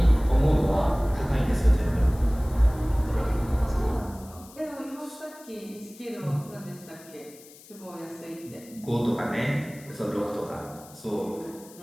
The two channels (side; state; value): left; noise; hiss, 22 dB below the sound